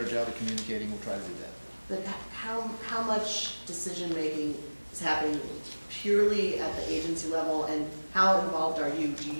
job of communicating, we'll try to do that. But how much decision-making is happening purely at the agency level, and how involved are you? Do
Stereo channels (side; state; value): both; inverted; correlation -1.00